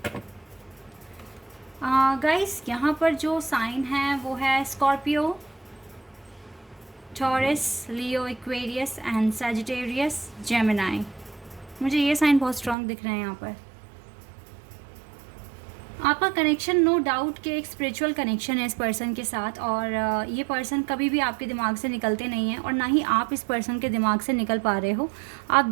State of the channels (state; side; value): drops out; left; at 12.8 s